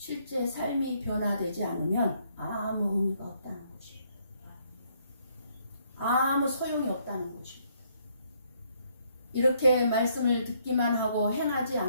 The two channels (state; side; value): inverted; both; correlation -0.69